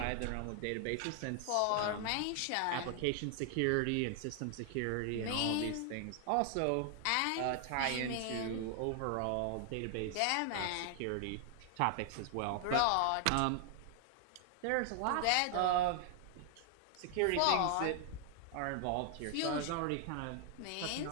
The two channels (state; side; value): different; both; correlation 0.00